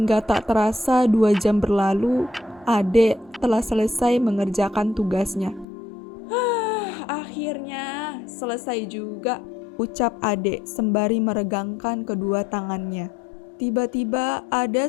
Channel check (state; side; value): drops out; right; at 5.7 s